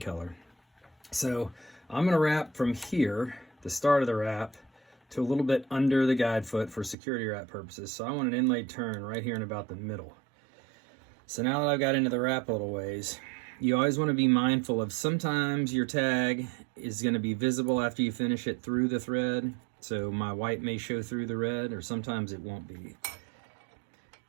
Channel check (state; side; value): drops out; left; at 7.0 s